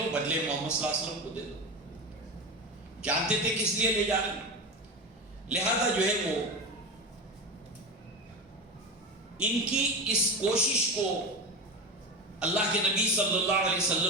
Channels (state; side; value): normal; both; correlation 0.22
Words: بدلے محمد صلی اللہ علیہ وسلم کو دے دو. جانتے تھے کس لیے لے جانا، لہذا جو ہے وہ ان کی اس کوشش کو اللہ کے نبی صلی اللہ علیہ